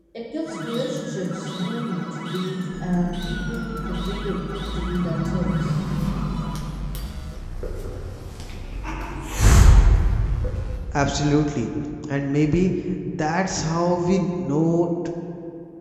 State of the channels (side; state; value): both; identical; correlation 1.00